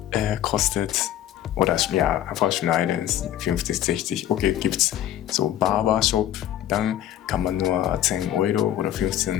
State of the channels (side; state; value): right; quieter; 12.0 dB